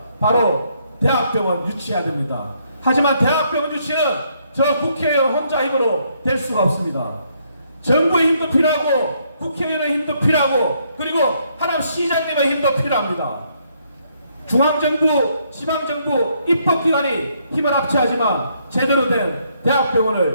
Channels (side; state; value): both; inverted; correlation -0.72